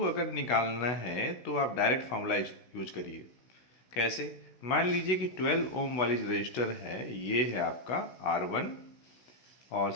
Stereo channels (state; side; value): late; right; 16 ms